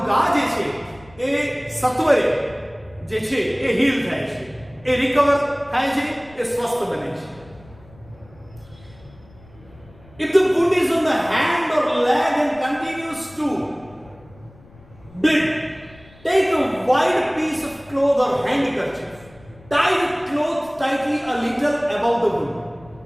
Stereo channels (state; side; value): noise; left; rumble, 25 dB below the sound